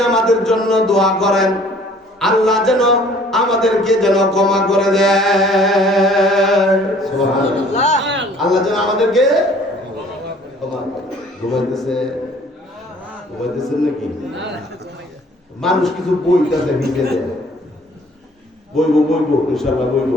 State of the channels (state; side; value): normal; both; correlation 0.55